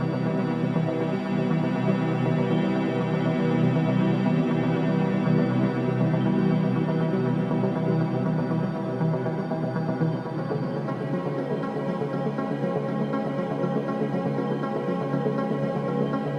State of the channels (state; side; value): identical; both; correlation 1.00